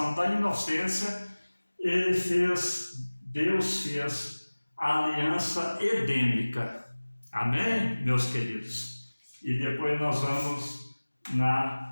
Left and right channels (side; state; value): both; inverted; correlation -1.00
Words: da inocência, Deus fez a aliança edêmica. Amém, meus queridos? E depois nós vamos